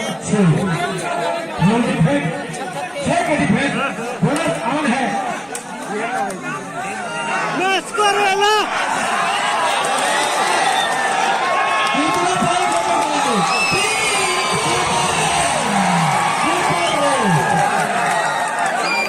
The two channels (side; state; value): both; identical; correlation 1.00